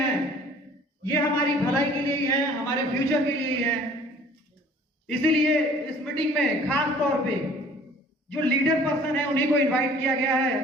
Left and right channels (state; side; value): normal; both; correlation 0.52